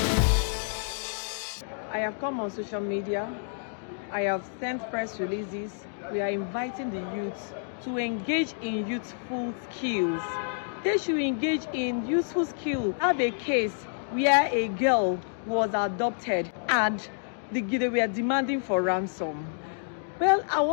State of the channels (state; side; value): silent; right; digital silence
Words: I have come on social media. I have sent press releases. We are inviting the youth to engage in youthful skills. They should engage in useful skills. I have a case where a girl was adopted and they were demanding for ransom. Well, I'll